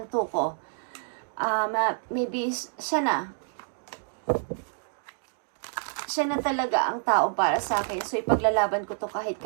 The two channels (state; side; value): silent; left; digital silence